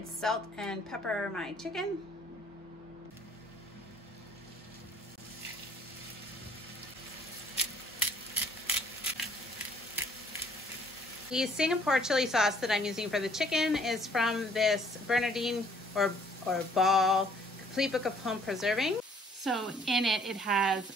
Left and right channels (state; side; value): normal; both; correlation 0.60